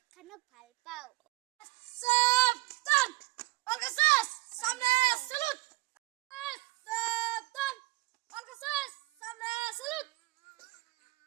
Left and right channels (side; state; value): left; quieter; 20.4 dB